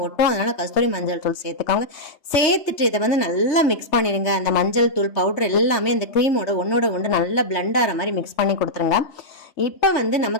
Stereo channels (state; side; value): late; right; 3.3 ms